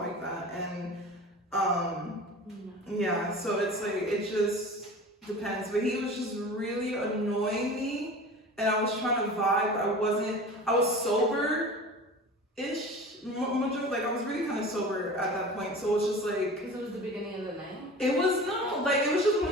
like that. And, yeah, so it's like, it just depends. But he was just really annoying me, and I was trying to vibe. I was sober-ish. Like, I was really kind of sober at that point, so it was just like... Because it was the beginning of the night? It was, no, like, it was just one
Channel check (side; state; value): both; normal; correlation 0.37